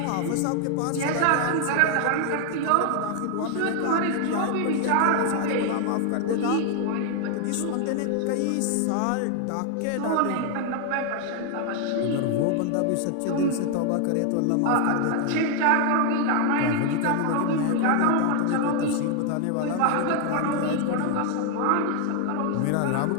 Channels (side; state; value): both; different; correlation 0.00